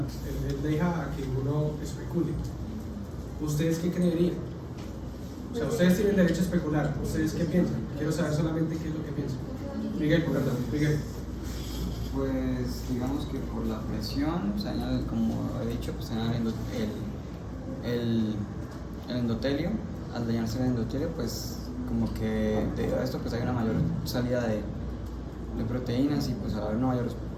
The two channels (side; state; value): both; identical; correlation 1.00